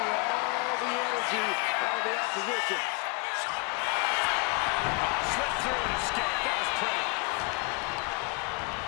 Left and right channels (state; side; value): quieter; right; 32.0 dB